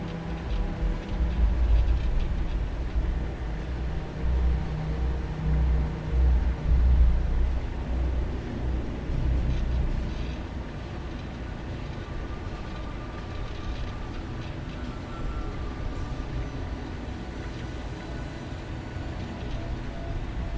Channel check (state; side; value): identical; both; correlation 1.00